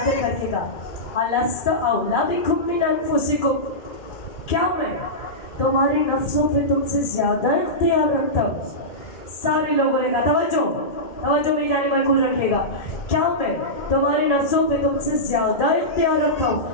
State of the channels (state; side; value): late; right; 2.2 ms